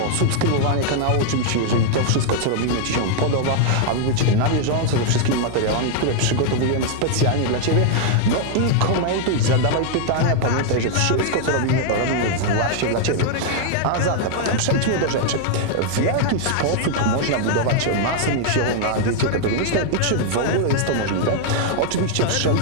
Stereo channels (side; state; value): both; different; correlation 0.00